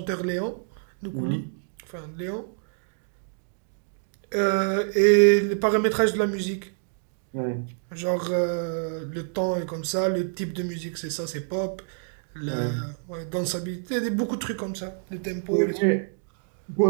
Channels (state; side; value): silent; left; 60 dB below the other